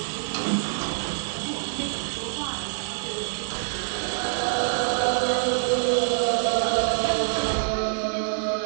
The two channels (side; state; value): left; silent; 61 dB below the other